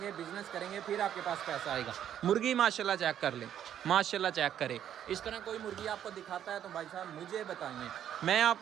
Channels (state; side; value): quieter; left; 10.2 dB